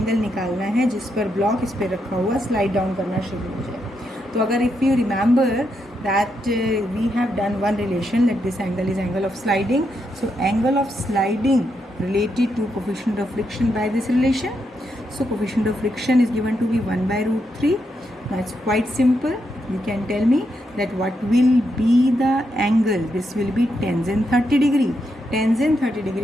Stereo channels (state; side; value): normal; both; correlation 0.81